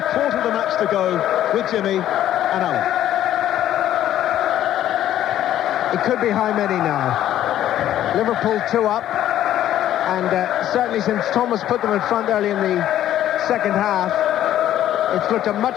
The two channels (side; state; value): right; quieter; 12.1 dB